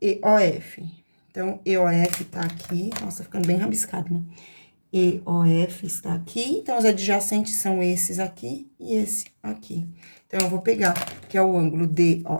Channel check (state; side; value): inverted; both; correlation -1.00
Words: EOF. Então, EOF tá aqui. Nossa, ficando bem rabiscado, né? EOF está aqui. Então, os adjacentes são esses aqui e esse aqui. Então, eu vou pegar, que é o ângulo